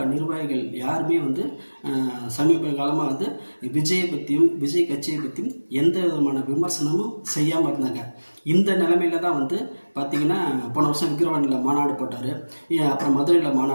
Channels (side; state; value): both; inverted; correlation -1.00